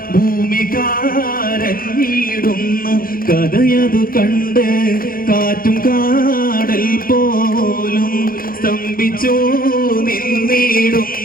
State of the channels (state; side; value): late; right; 0.42 ms